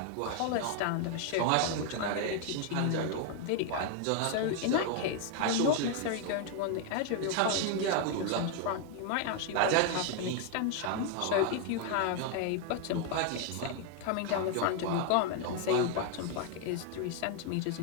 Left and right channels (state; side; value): different; both; correlation 0.00